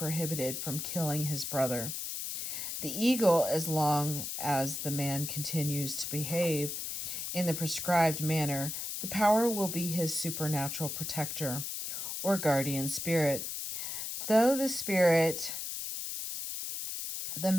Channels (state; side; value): noise; left; hiss, 5 dB below the sound